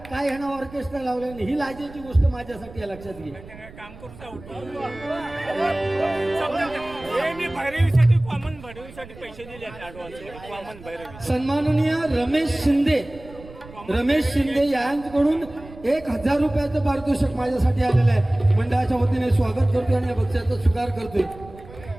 काय ह्यानं ऑर्केस्ट्रा लावलं नाही. ही लाजेची गोष्ट माझ्यासाठी आहे, लक्षात घे. सन्माननीय रमेश शिंदे यांच्याकडून 1,000 रुपयाचं पारितोषिक माझ्यासाठी आलेलं आहे. मंडळाच्या वतीने स्वागत करतोय आणि या बक्षिसाचा स्वीकार करतोय.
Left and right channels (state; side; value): noise; right; rumble, 18 dB below the sound